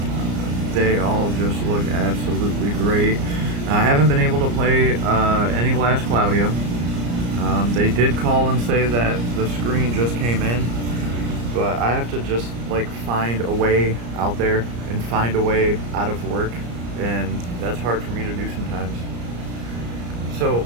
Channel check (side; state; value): left; late; 34 ms